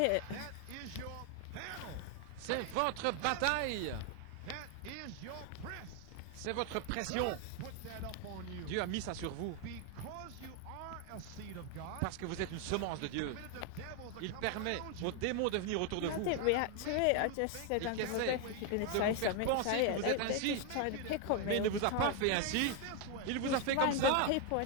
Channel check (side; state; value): both; different; correlation 0.01